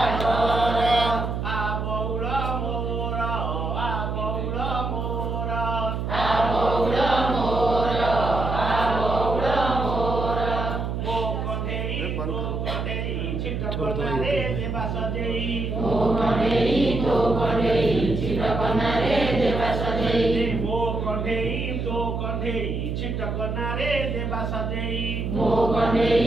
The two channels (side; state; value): right; noise; hum, 2 dB below the sound